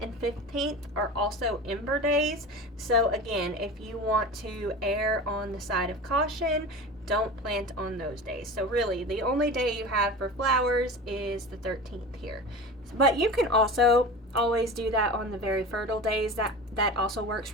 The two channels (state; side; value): normal; both; correlation 0.32